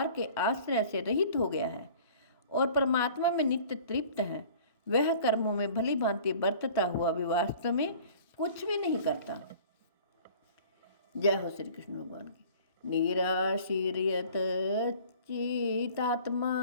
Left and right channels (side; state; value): both; inverted; correlation -0.48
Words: के आश्रय से रहित हो गया है और परमात्मा में नित्य तृप्त है, वह कर्मों में भली भांति बरतता हुआ भी वास्तव में कुछ भी नहीं करता। जय हो श्री कृष्ण भगवान की। निराशीर्यत